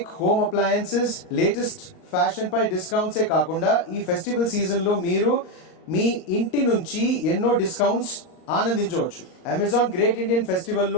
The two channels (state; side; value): late; right; 38 ms